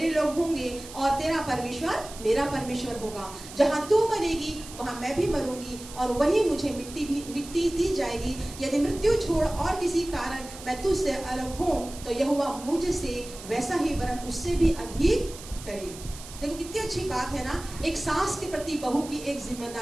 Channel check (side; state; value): right; noise; hiss, 15 dB below the sound